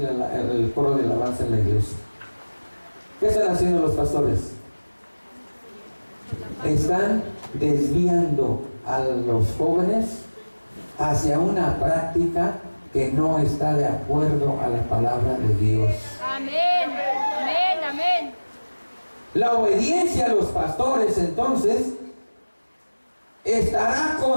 el coro de alabanza en la iglesia. ¿Qué están haciendo los pastores? Están desviando a los jóvenes hacia una práctica que no está de acuerdo a la palabra de Dios. Amén, amén, amén. La obediencia a los pastores, entonces, estará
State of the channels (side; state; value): both; inverted; correlation -1.00